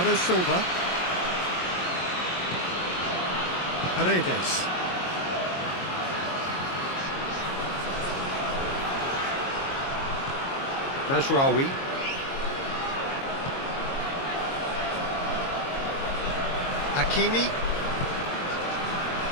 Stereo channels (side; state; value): right; late; 22 ms